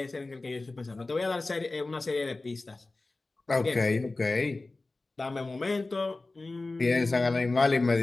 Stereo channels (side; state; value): right; quieter; 3.2 dB